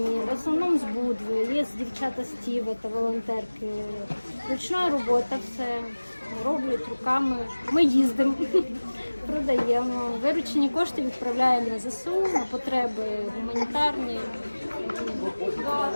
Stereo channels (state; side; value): inverted; both; correlation -1.00